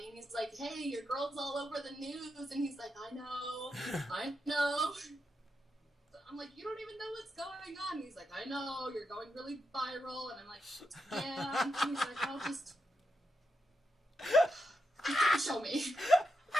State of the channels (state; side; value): normal; both; correlation 0.85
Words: and he's like, hey, your girl's all over the news, and he's like, I know. I'm like, you don't even know what's going on. And he's like, I know, you're going really viral. And I'm like, yeah. And he's like, oh, just show me.